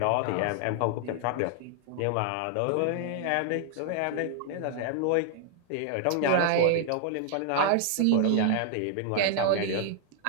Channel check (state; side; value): different; both; correlation 0.00